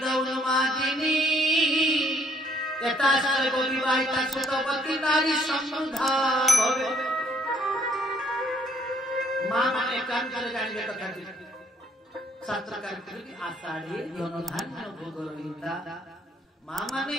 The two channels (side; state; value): both; normal; correlation 0.65